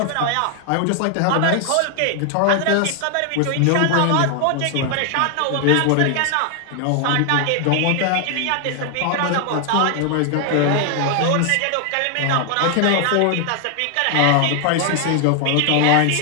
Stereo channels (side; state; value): both; different; correlation 0.00